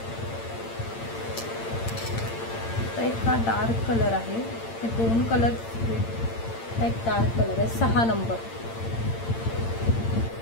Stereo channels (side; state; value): right; late; 8.8 ms